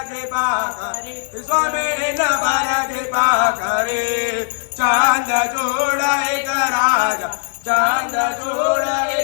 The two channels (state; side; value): silent; right; digital silence